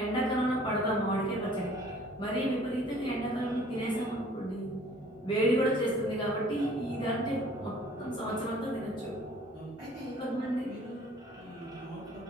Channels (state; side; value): normal; both; correlation 0.54